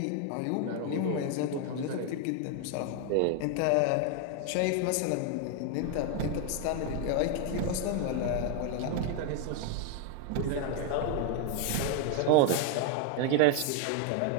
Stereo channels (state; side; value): different; both; correlation 0.01